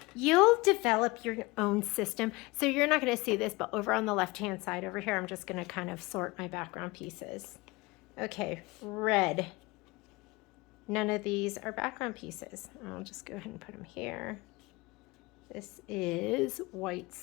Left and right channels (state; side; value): quieter; right; 23.3 dB